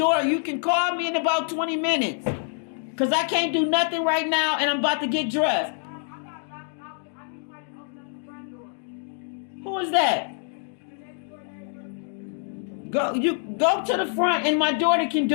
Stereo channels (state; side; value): silent; right; 60 dB below the other